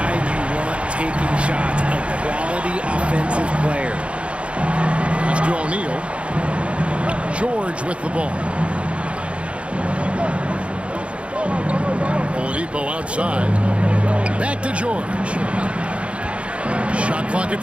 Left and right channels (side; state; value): left; late; 0.060 ms